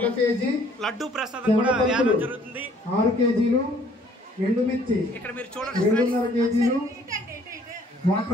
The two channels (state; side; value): normal; both; correlation 0.60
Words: కేజీ, లడ్డు ప్రసాదం కూడా వేయడం జరుగుతుంది. 6 కేజీలు, ఎండుమిర్చి ఇక్కడ మీరు చూడండి 2.5 కేజీలు,